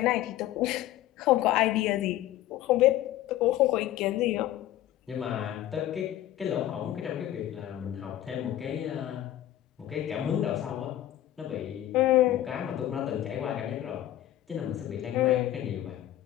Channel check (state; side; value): quieter; right; 13.3 dB